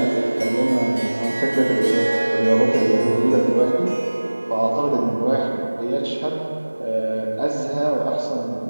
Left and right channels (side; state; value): both; inverted; correlation -1.00